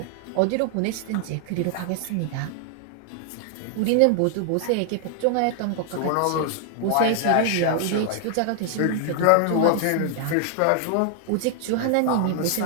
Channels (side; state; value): both; different; correlation 0.00